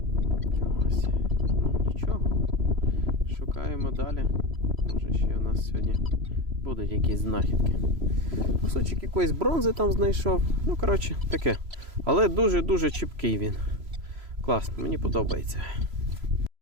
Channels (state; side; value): late; left; 3.0 ms